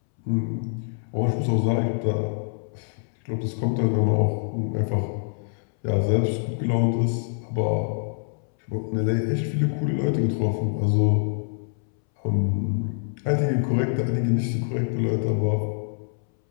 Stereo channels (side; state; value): right; silent; 62 dB below the other